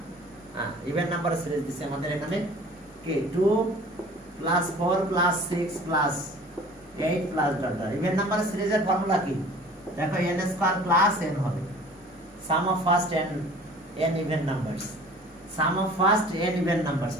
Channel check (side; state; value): both; normal; correlation 0.47